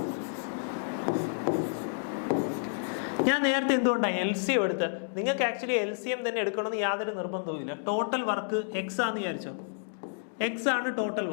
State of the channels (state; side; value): silent; right; digital silence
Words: ഞാൻ നേരത്തെ എന്തുകൊണ്ടാണ് LCM എടുത്ത്? നിങ്ങൾക്ക് ആക്ച്വലി LCM തന്നെ എടുക്കണമെന്ന് യാതൊരു നിർബന്ധവുമില്ല. ടോട്ടൽ വർക്ക് എക്സ് ആണെന്ന് വിചാരിച്ചോ, എക്സ് ആണ് total